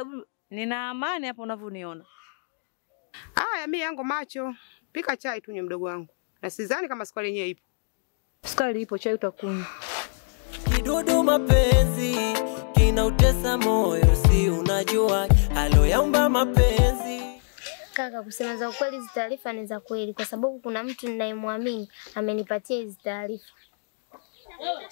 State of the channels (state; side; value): silent; right; digital silence